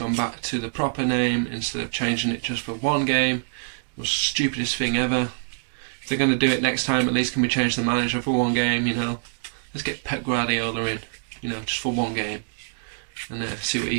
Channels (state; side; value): silent; left; digital silence